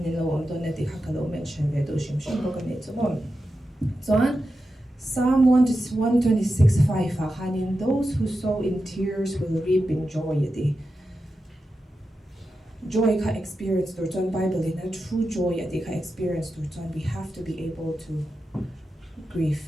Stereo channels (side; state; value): both; normal; correlation 0.90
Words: nilo ang to neti hakalo mention vedo shimshim ko kanito mo. So Psalm 126:5 hanin, those who sow in tears will reap in joy. Joy ka experience turton Bible in a true joy ka experience turton. We have to be able to